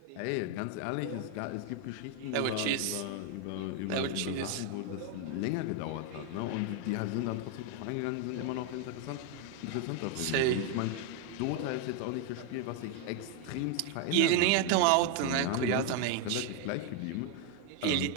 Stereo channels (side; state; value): both; different; correlation 0.01